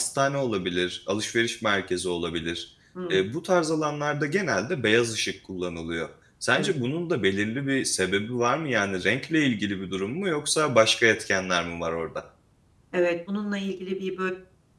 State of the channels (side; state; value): both; identical; correlation 1.00